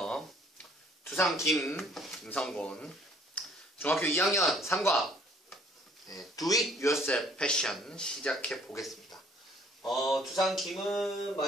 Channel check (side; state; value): both; normal; correlation 0.59